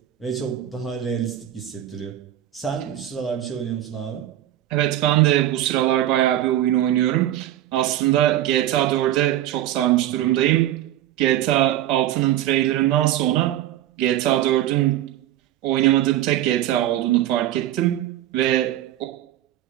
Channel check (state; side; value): quieter; left; 13.0 dB